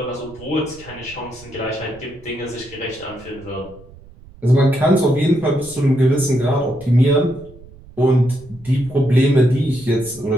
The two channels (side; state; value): right; noise; rumble, 22 dB below the sound